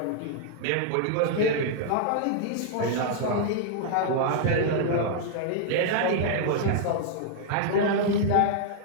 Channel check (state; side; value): different; both; correlation -0.01